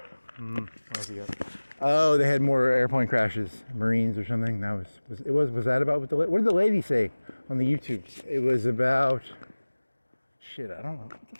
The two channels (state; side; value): inverted; both; correlation -1.00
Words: else you got? Oh, they had more airplane crashes, Marines or something. That was that about what did the lady say on the YouTubes? It was about shit. I don't know. What the